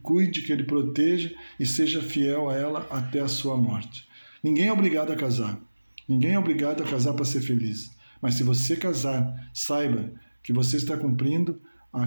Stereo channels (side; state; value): both; inverted; correlation -1.00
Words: cuide, que ele proteja e seja fiel a ela até a sua morte. Ninguém é obrigado a casar. Ninguém é obrigado a casar para ser feliz. Mas se você casar, saiba que você está cumprindo